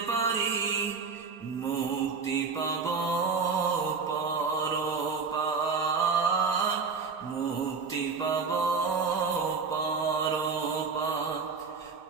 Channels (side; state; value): left; quieter; 5.1 dB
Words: পারি, মুক্তি পাব পরপার, মুক্তি পাব পরপার।